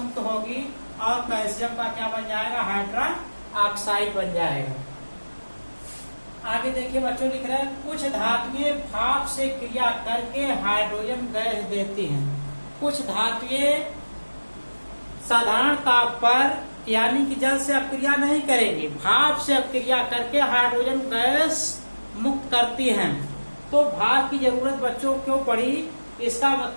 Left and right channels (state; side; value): inverted; both; correlation -1.00